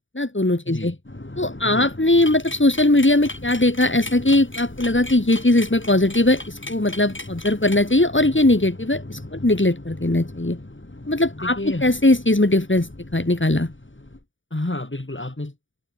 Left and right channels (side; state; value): right; late; 0.56 ms